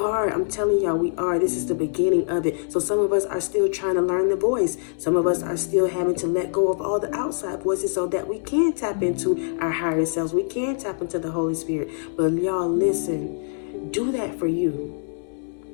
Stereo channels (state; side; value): silent; right; 63 dB below the other